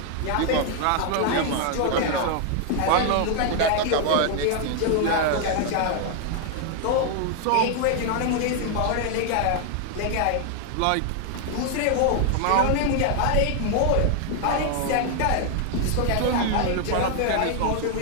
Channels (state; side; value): different; both; correlation 0.00